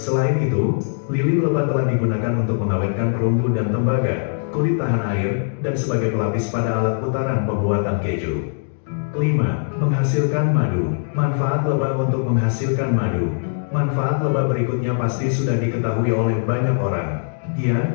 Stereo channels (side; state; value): right; silent; digital silence